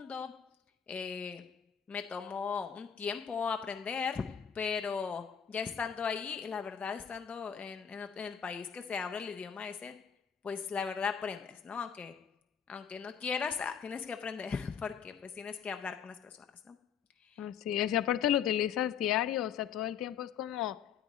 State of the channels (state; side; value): quieter; right; 7.7 dB